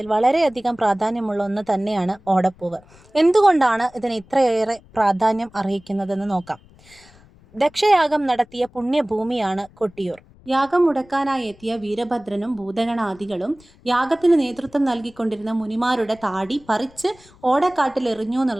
വളരെയധികം പ്രാധാന്യമുള്ള ഒന്ന് തന്നെയാണ് ഓടപ്പൂവ്. എന്തുകൊണ്ടാണ് ഇതിന് ഇത്രയേറെ പ്രാധാന്യം അർഹിക്കുന്നതെന്ന് നോക്കാം. ദക്ഷയാഗം നടത്തിയ പുണ്യഭൂമിയാണ് കൊട്ടിയൂർ. യാഗം മുടക്കാനായി എത്തിയ വീരഭദ്രനും ഭൂതഗണാദികളും യാഗത്തിന് നേതൃത്വം നൽകിക്കൊണ്ടിരുന്ന മുനിമാരുടെ താടി പറിച്ച് ഓടക്കാട്ടിൽ എറിഞ്ഞു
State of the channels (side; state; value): left; noise; rumble, 26 dB below the sound